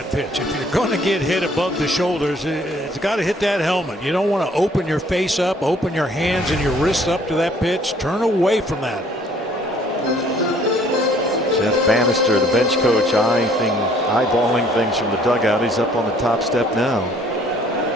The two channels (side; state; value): both; normal; correlation 0.59